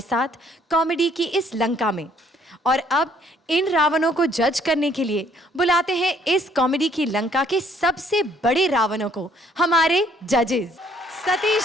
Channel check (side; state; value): both; normal; correlation 0.64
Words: साथ कॉमेडी की इस लंका में। और अब इन रावणों को जज करने के लिए बुलाते हैं इस कॉमेडी की लंका के सबसे बड़े रावणों को, हमारे जजेस सतीश